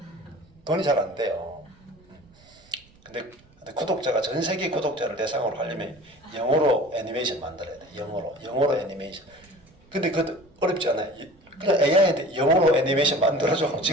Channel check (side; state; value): right; noise; rumble, 29 dB below the sound